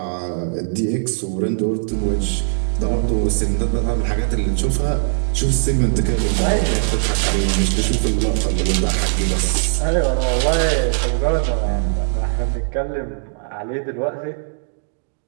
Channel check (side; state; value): left; silent; digital silence